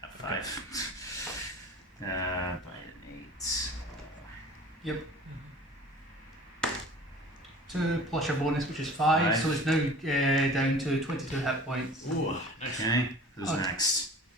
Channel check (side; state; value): both; normal; correlation 0.43